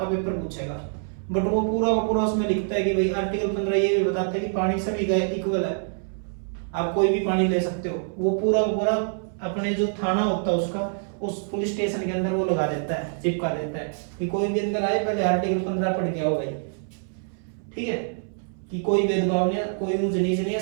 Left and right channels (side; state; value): left; silent; 61 dB below the other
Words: पेपर पूछेगा, बट वो पूरा का पूरा उसमें लिखता है कि भाई आर्टिकल 15 ये भी बताता है कि पानी सभी का इक्वल है, आप कोई भी पानी ले सकते हो। वो पूरा का पूरा अपने जो थाना होता है उसका, उस पुलिस स्टेशन के अंदर वो लगा देता है, चिपका देता है कि कोई भी अंदर आए पहले आर्टिकल 15 पढ़ के आओ भाई। ठीक है, कि कोई भेदभाव नहीं है, कोई ऊंच नीच नहीं है,